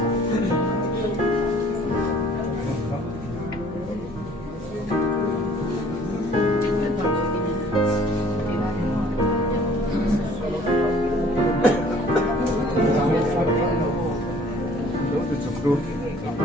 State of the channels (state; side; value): normal; both; correlation 0.55